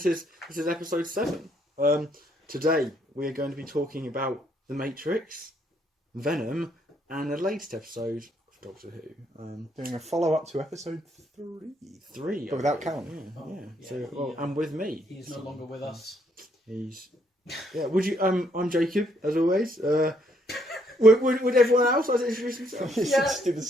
is episode 7. Today we are going to be talking about The Matrix, Venom, and the latest episode of Doctor Who. Doing a follow-up to episode 3. But without Callum. Yeah. So, and with me. He's no longer with us. Would you? I'm Jacob, as always. Would everyone else like to introduce themselves? Just do the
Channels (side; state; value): both; normal; correlation 0.70